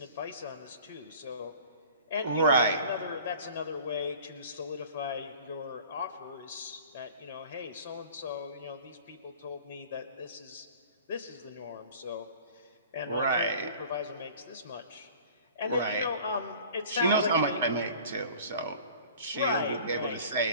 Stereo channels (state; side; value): inverted; both; correlation -0.46